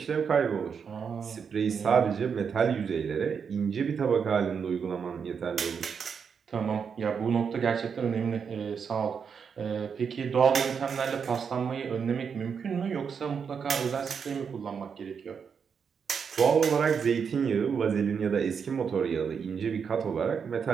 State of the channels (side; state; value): left; quieter; 6.5 dB